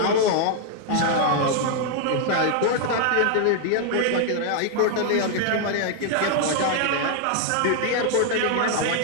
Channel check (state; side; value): different; both; correlation 0.00